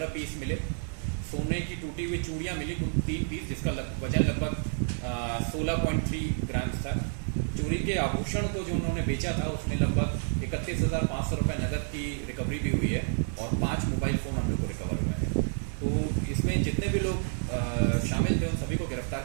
पीस मिले, सोने की टूटी हुई चूड़ियाँ मिली कुल 3 पीस जिसका वजन लगभग 16.3 ग्राम था। चोरी के आभूषण को जो उन्होंने बेचा था उसमें लगभग 31,500 रुपये नकद की रिकवरी भी हुई है और 5 मोबाइल फ़ोन हम लोग को रिकवर हुए हैं। तो इसमें जितने भी लोग शामिल थे उन सभी को गिरफ्तार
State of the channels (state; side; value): silent; left; 58 dB below the other